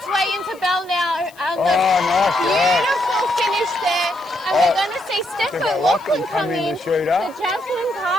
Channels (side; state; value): left; noise; hiss, 26 dB below the sound